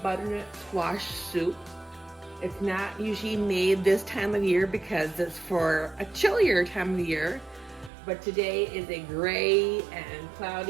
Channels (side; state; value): left; drops out; at 7.9 s